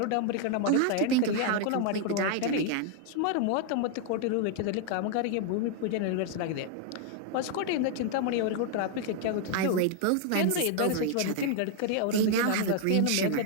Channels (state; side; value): different; both; correlation 0.00